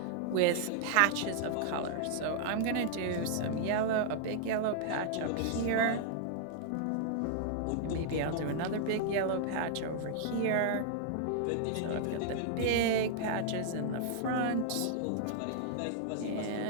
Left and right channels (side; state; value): both; different; correlation -0.01